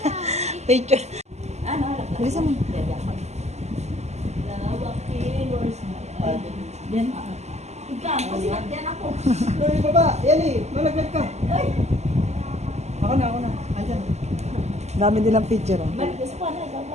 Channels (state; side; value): late; left; 0.33 ms